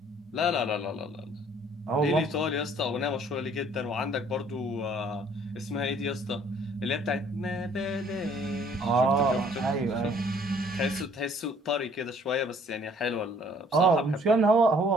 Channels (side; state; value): both; normal; correlation 0.59